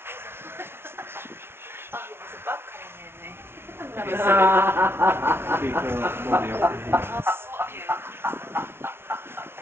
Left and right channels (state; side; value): late; left; 0.12 ms